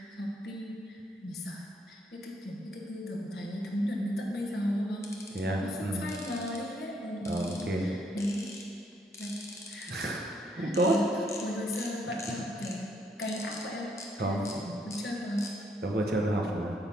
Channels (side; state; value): both; normal; correlation 0.72